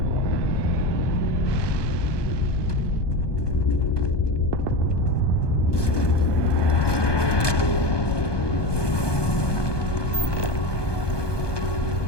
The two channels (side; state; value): right; late; 1.2 ms